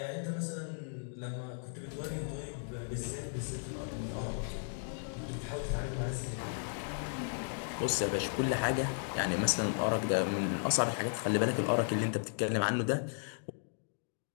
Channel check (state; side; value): silent; right; digital silence